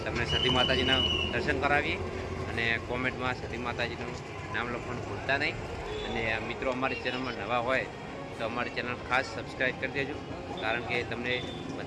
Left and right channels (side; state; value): both; identical; correlation 1.00